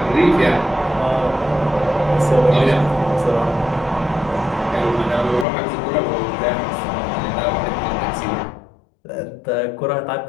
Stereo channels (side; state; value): right; drops out; at 5.5 s